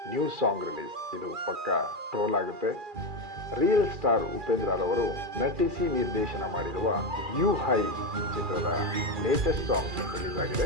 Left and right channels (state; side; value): late; left; 2.4 ms